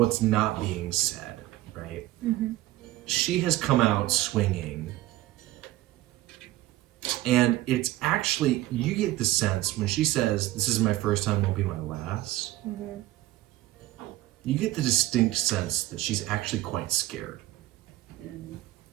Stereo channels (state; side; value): quieter; left; 16.4 dB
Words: not being said, right? she has come out swinging. And it's actually, you get the sense when she says, "This is my first time, won't be my last." Mm-hmm. You get the distinct sense that she's actually quite scared.